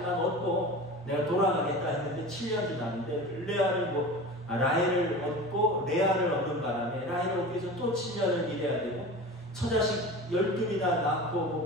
얻고 내가 돌아가겠다 했는데 7년 지났는데 라헬을 얻고 레아를 얻는 바람에 라헬을 얻기 위해서 또 7년을 일해야 되고, 처자식 12이나 낳고 뭐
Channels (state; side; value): normal; both; correlation 0.33